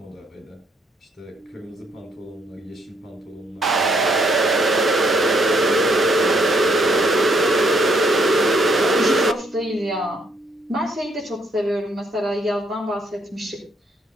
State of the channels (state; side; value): normal; both; correlation 0.71